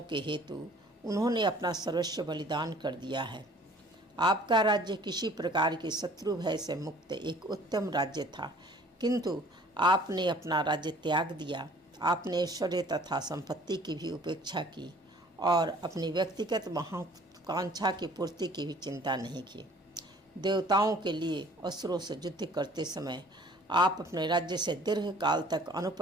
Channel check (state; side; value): normal; both; correlation 0.53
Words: के हेतु उन्होंने अपना सर्वस्व बलिदान कर दिया है। आपका राज्य किसी प्रकार के शत्रु भय से मुक्त एक उत्तम राज्य था, किंतु आपने अपना राज्य त्याग दिया। आपने ऐश्वर्य तथा संपत्ति की भी उपेक्षा की और अपनी व्यक्तिगत महत्वाकांक्षा की पूर्ति की भी चिंता नहीं की। देवताओं के लिए असुरों से युद्ध करते समय आप अपने राज्य से दीर्घ काल तक